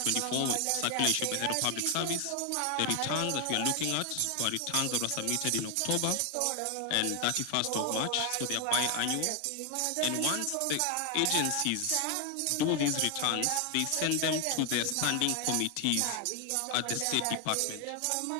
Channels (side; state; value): both; different; correlation 0.00